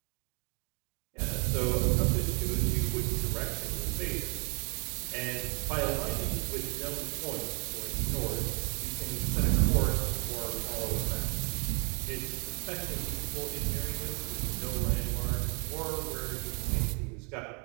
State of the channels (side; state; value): left; quieter; 35.8 dB